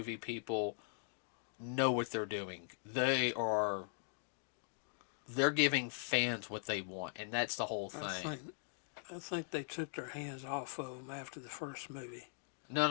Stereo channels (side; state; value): right; silent; digital silence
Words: people, know what they're doing. They're giving fans what they want, and that's the whole thing. I think they took their hands off of them after the first movie.